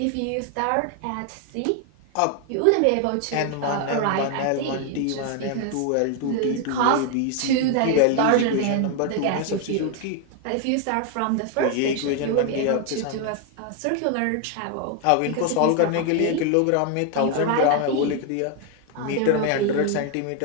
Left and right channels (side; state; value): both; different; correlation 0.01